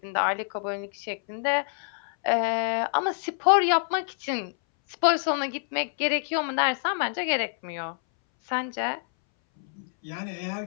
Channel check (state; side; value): silent; right; 60 dB below the other